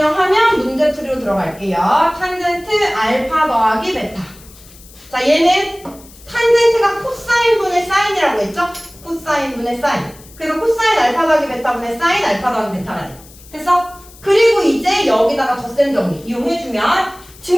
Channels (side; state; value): left; noise; hiss, 22 dB below the sound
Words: 문제풀이로 들어갈게요. 탄젠트 알파 더하기 베타. 자, 얘는 탄젠트가 코사인분의 사인이라고 했죠? 코사인분의 사인. 그래서 코사인 알파 더하기 베타분의 사인 알파 더하기 베타가 돼. 됐어? 그리고 이제 여기다가 덧셈 정리 이용해주면